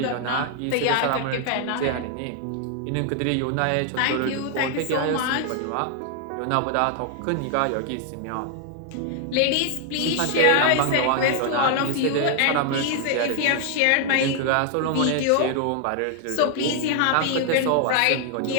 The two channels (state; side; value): different; both; correlation 0.00